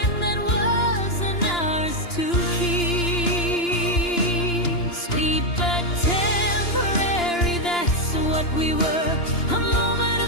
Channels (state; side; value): late; right; 2.9 ms